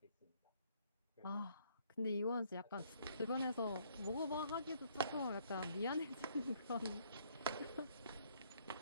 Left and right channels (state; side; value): inverted; both; correlation -0.65